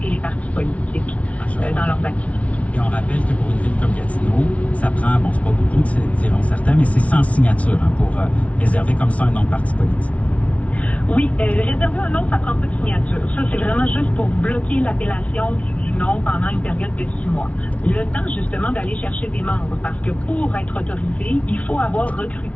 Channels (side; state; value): right; late; 0.065 ms